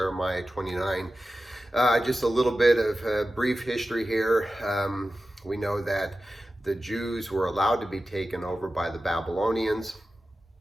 29. Just a little bit of brief history here. We know that the Jews were allowed to be taken over by the Babylonians,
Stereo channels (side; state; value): both; normal; correlation 0.94